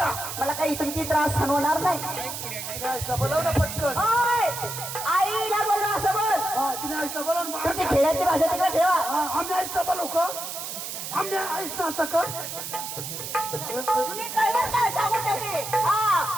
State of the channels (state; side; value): noise; right; hiss, 7 dB below the sound